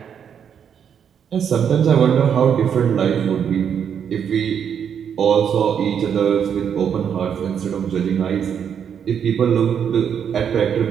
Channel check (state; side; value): quieter; left; 8.0 dB